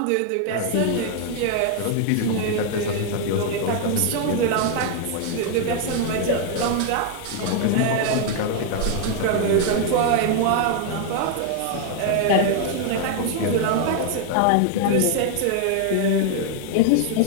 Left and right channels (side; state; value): both; different; correlation 0.00